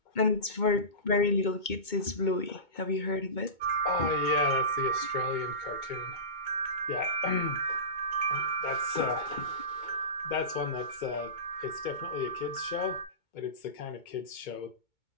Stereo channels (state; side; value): late; right; 2.2 ms